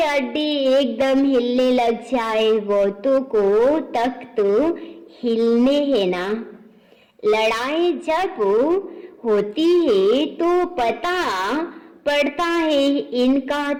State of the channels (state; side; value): identical; both; correlation 1.00